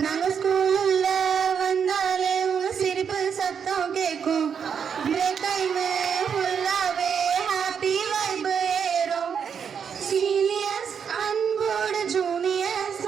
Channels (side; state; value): left; quieter; 7.1 dB